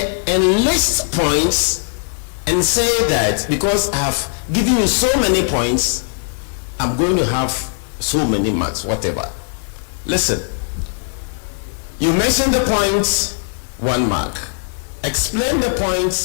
and list points and say that because I have given you so many points, I'm going to have so many marks, whatever. Listen, you mention the points, 1 mark. Explain the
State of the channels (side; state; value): right; silent; digital silence